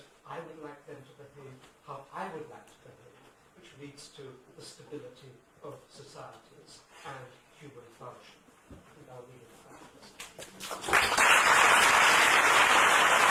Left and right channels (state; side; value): identical; both; correlation 1.00